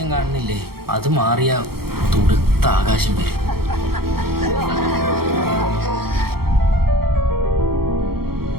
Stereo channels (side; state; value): left; late; 0.94 ms